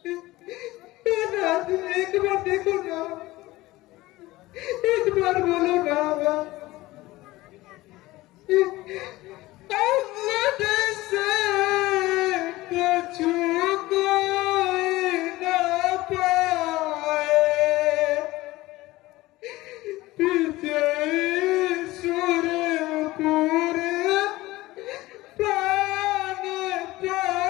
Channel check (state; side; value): quieter; right; 18.6 dB